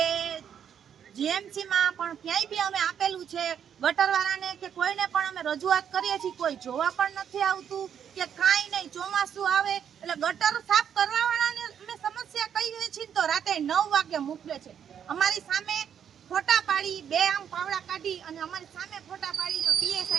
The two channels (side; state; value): left; quieter; 8.5 dB